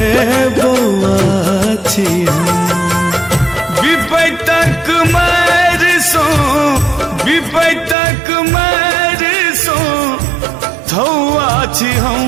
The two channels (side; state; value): left; drops out; at 8.0 s